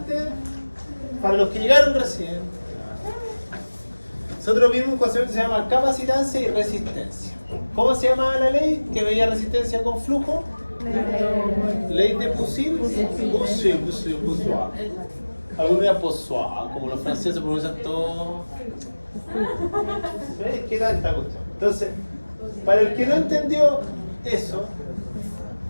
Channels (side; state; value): both; inverted; correlation -1.00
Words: para los que llegaron recién, nosotros vimos un concepto que se llama capacitancia y resistencia. ¿Cómo se llamaba la ley que veía resistencia con flujo? Ley de Poiseuille. Algunos de Poiseuille, como los franceses pronuncian todo. ¿Ves? ¿Qué tanta cuestión? Entonces, para el que no entendió eso,